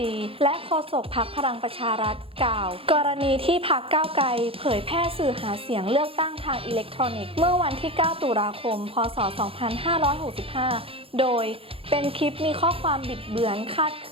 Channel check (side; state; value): left; late; 0.27 ms